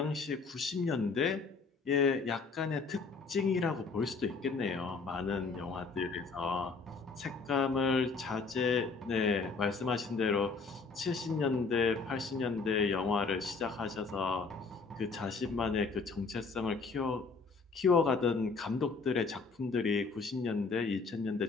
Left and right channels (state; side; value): quieter; right; 4.5 dB